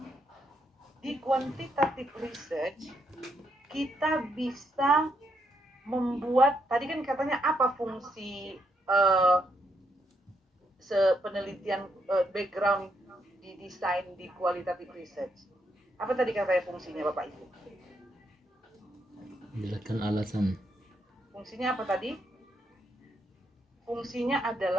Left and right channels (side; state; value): both; normal; correlation 0.77